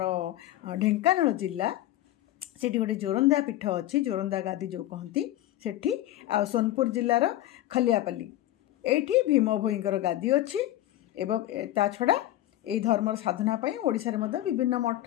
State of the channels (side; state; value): right; quieter; 14.5 dB